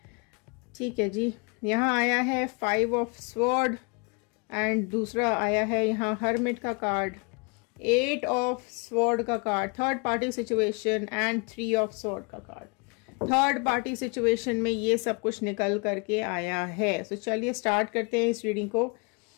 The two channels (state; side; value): quieter; right; 32.4 dB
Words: ठीक है जी। यहाँ आया है 5 ऑफ स्वॉर्ड एंड दूसरा आया है यहाँ हर्मिट का कार्ड, 8 ऑफ स्वॉर्ड का card, third party situation and 3 of sword का कार्ड। थर्ड पार्टी सिचुएशन में ये सब कुछ निकल करके आया है। सो चलिए स्टार्ट करते हैं इस रीडिंग को।